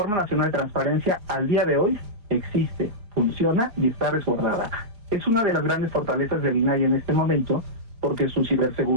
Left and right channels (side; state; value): left; late; 4.8 ms